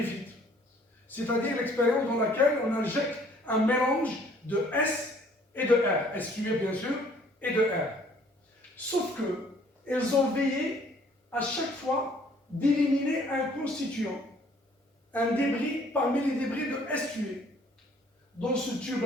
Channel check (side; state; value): both; normal; correlation 0.59